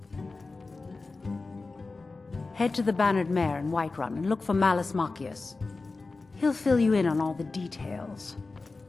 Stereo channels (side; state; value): right; quieter; 3.7 dB